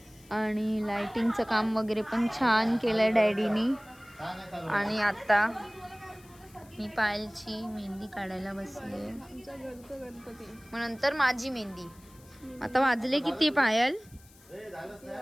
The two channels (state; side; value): noise; left; hiss, 26 dB below the sound